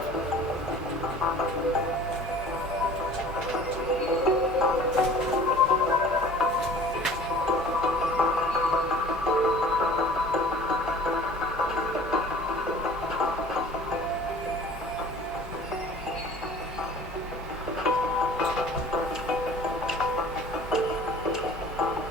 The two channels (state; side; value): normal; both; correlation 0.46